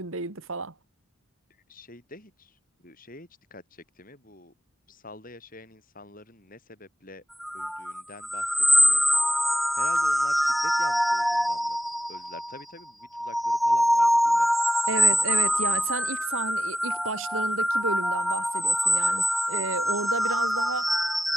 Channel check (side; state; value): both; normal; correlation 0.90